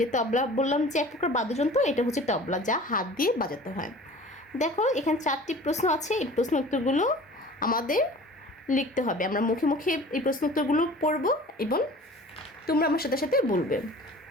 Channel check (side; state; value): both; normal; correlation 0.43